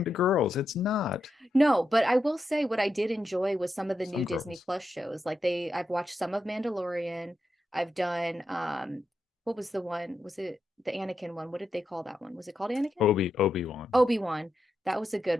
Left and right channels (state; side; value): normal; both; correlation 0.86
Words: to girls. It's not. No, but I will say what I did enjoy was some of the Some new Disney girls. Plus shows. Like I've watched some of Mandalorian. I've done what was the one? Was it the Anakin one? What did they call that one? Was it called Anakin? Obi-Wan. Obi-Wan. That was a